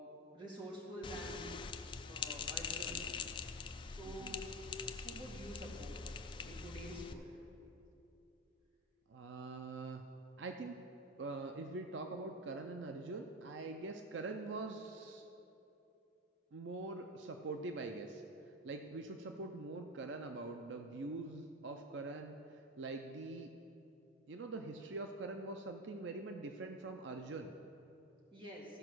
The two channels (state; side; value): normal; both; correlation 0.21